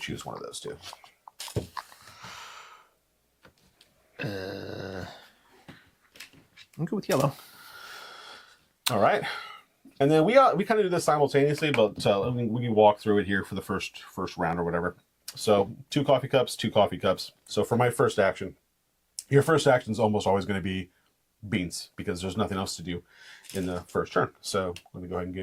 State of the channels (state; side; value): identical; both; correlation 1.00